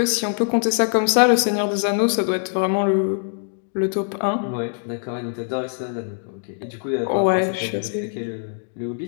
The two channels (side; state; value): right; silent; digital silence